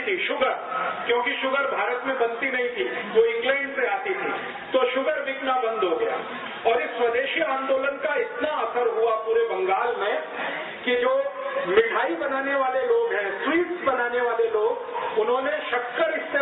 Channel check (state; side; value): identical; both; correlation 1.00